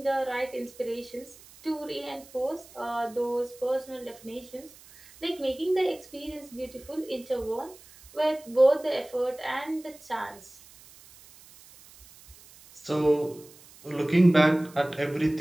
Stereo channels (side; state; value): right; noise; hiss, 22 dB below the sound